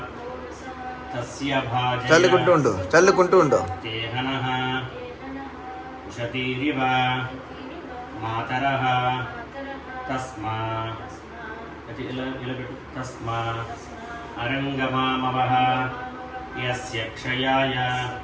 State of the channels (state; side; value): identical; both; correlation 1.00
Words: తస్య భాజయ చల్లుకుంటూ ఉండు. తేహనః ఉషతీరివ మాతరః తస్మా తస్మా అరంగమామవః యస్య క్షయాయ